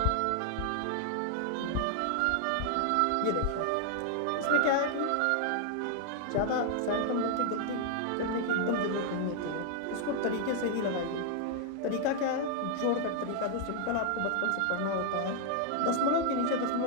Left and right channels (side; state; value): both; different; correlation 0.00